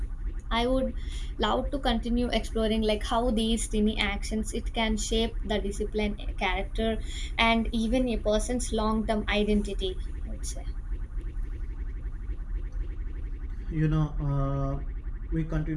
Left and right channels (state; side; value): identical; both; correlation 1.00